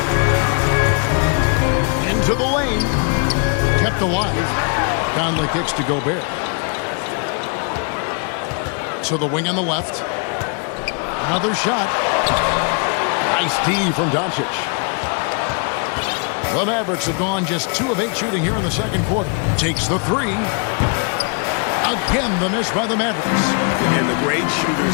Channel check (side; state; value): right; quieter; 38.6 dB